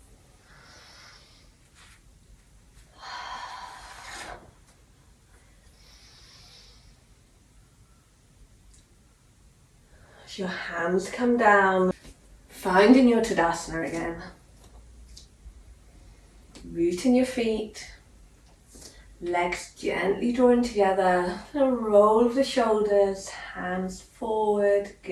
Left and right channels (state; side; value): identical; both; correlation 1.00